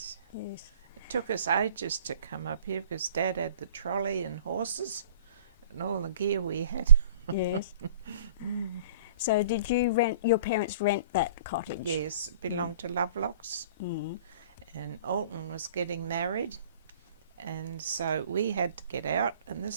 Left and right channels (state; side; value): inverted; both; correlation -0.50